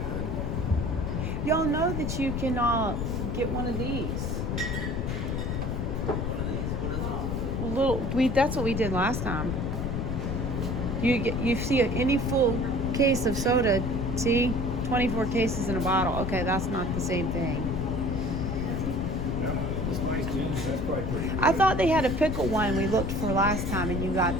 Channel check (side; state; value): left; noise; rumble, 2 dB below the sound